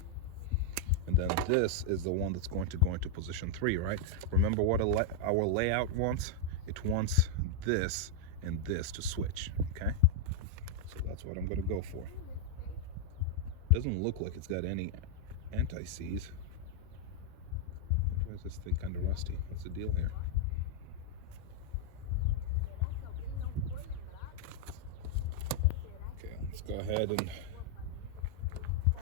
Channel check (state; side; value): different; both; correlation -0.01